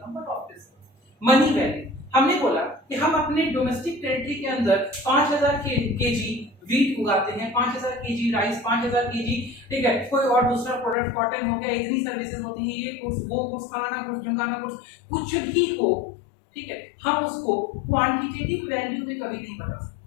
But obviously money value, हमने बोला कि हम अपने डोमेस्टिक टेरिटरी के अंदर 5000 केजी वीट उगाते हैं, 5000 केजी राइस, 5000 केजी, ठीक है, कोई और दूसरा प्रोडक्ट कॉटन हो गया, इतनी सर्विसेज होती हैं, ये गुड्स वो गुड्स, फलाना गुड्स, ढिमकाना गुड्स, कुछ भी हो, ठीक है। हम उसको क्वांटिटेटिव वैल्यू में कभी नहीं बता सकते।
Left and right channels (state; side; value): drops out; right; at 11.0 s